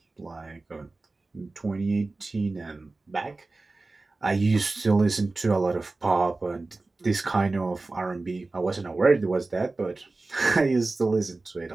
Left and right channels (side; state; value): left; quieter; 3.4 dB